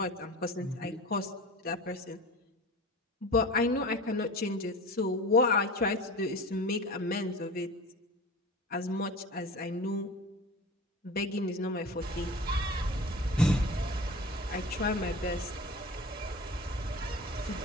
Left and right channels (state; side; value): normal; both; correlation 0.35